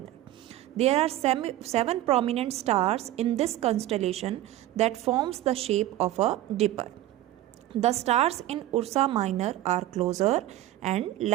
There are seven prominent stars in this constellation that forms the shape of a dipper. The stars in Ursa Minor are closer and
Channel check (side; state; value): left; quieter; 14.4 dB